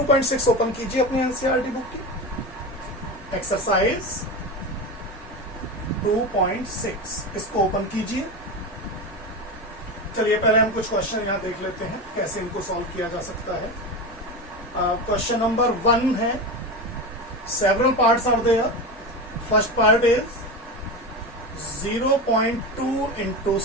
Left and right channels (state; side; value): normal; both; correlation 0.22